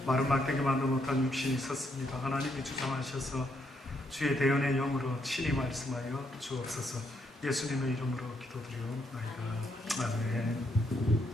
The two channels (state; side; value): normal; both; correlation 0.75